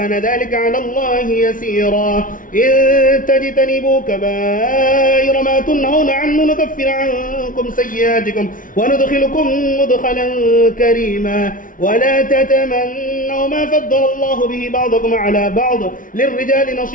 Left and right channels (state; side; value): late; right; 0.39 ms